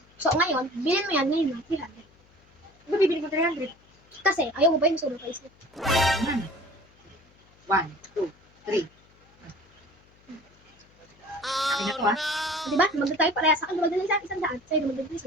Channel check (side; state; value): left; noise; hum, 30 dB below the sound